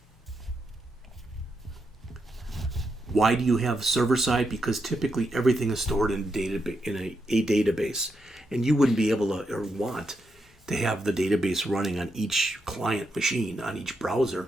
Why do you have server-side? Because typically everything is stored in a database, and you wouldn't be able to or want to have the database running on each client machine, on each browser.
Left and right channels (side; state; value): both; normal; correlation 0.83